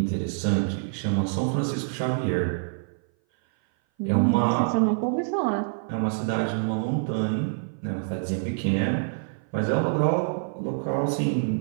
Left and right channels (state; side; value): silent; left; 58 dB below the other